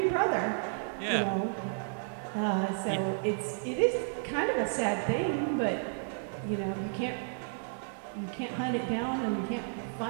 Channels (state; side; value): silent; left; 56 dB below the other